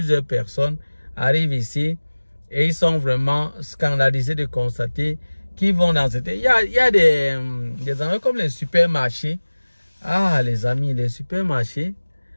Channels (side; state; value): both; inverted; correlation -1.00